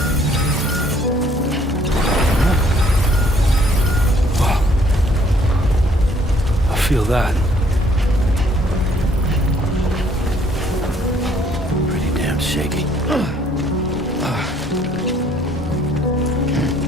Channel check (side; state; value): both; normal; correlation 0.63